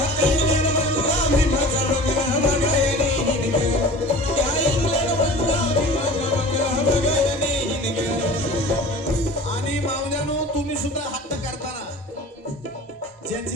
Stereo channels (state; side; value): normal; both; correlation 0.40